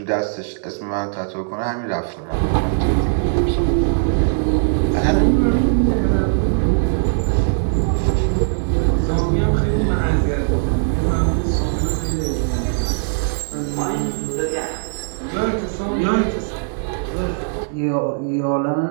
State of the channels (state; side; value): silent; left; 66 dB below the other